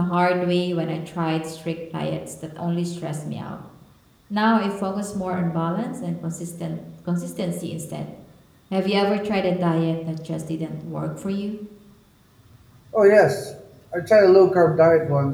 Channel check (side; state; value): both; identical; correlation 1.00